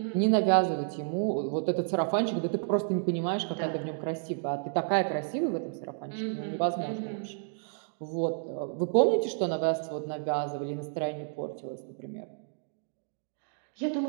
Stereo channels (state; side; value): silent; left; digital silence